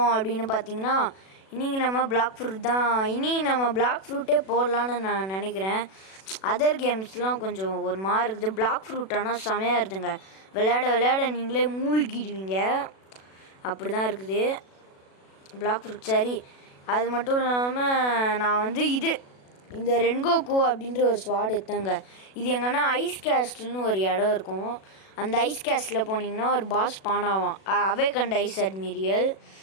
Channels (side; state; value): right; late; 37 ms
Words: அப்படின்னு பார்த்தீங்கன்னா, இன்றைக்கி நம்ம பிளாக் ஃப்ரூட் தான். நம்ம பிளாக் ஃப்ரூட்டே போடலான்னு நான் நினைக்கிறேன். அதர் கேம்ஸ்லாம் கொஞ்சம் ஒரு மாதிரி இருக்குது. பிளாக் ஃப்ரூட் ஆனால் செமையாக இருக்குதுங்க. விளையாட விளையாட நீங்களே மூழ்கிடுவீங்க. அப்படி தான் இருக்குது பிளாக் ஃப்ரூட். சரி, அது மட்டும் இல்லாமல் நான் இந்த ரென்கோக்கு அப்படின்ற ஒரு ஸ்வாட் எடுத்தேங்க. இது எங்கன்னா ஐஸ் கேஸ்ட்னு ஒரு இடம் இருக்கும். அந்த ஐஸ் கேஸ்டில் போனீங்கன்னா ஒரு பாஸ் பானாவான், அவே கண்ட ஐஸ் அட்மிரியல்.